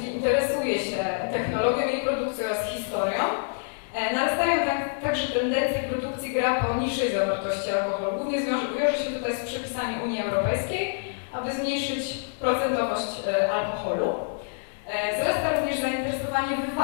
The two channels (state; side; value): silent; right; 60 dB below the other